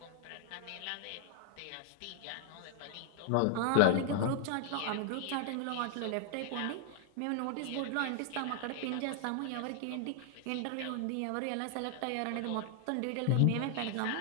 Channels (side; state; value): both; different; correlation 0.00